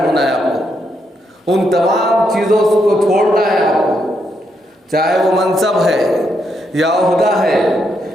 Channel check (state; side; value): normal; both; correlation 0.78